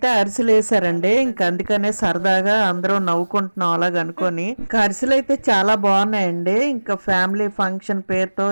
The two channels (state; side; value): inverted; both; correlation -1.00